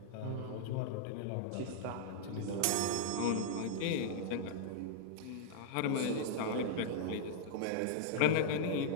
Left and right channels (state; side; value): different; both; correlation -0.02